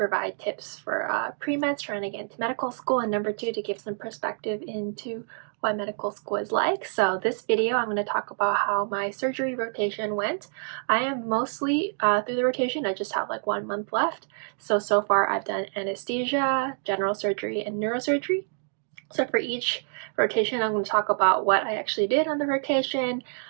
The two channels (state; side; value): silent; left; 60 dB below the other